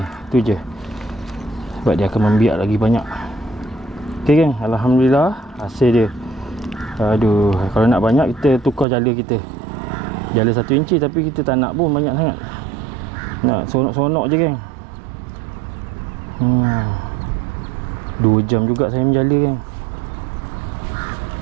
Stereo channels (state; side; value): drops out; left; at 8.8 s